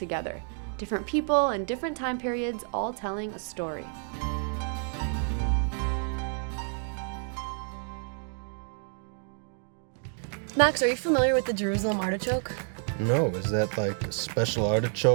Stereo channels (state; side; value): silent; left; 58 dB below the other